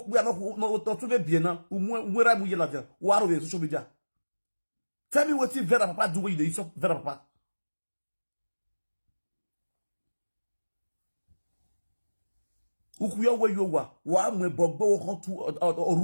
we are not to be now, where I'm with you, what are we social media? Tell me what you Vera Papa do with you, Vera Papa. Who where you were, why me Bobo to or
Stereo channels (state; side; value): inverted; both; correlation -1.00